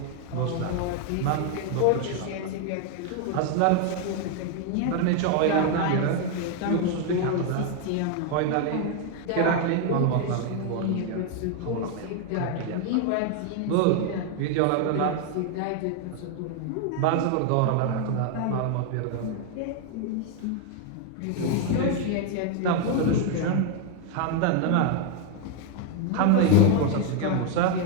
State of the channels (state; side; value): different; both; correlation 0.01